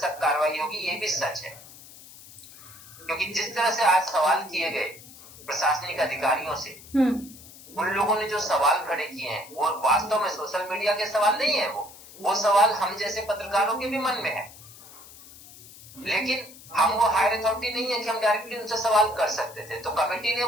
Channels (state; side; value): noise; left; hiss, 19 dB below the sound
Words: कार्रवाई होगी। ये भी सच है, क्योंकि जिस तरह से आज सवाल किए गए प्रशासनिक अधिकारियों से, उन लोगों ने जो सवाल खड़े किए हैं वो वास्तव में सोशल मीडिया के सवाल नहीं है, वो सवाल हम जैसे पत्रकारों के भी मन में है, लेकिन हम वो हायर अथॉरिटी नहीं है कि हम डायरेक्टली उनसे सवाल कर सकते थे। तो कमेटी ने